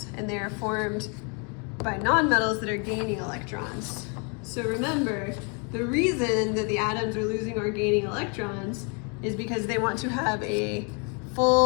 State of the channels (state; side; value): quieter; right; 35.7 dB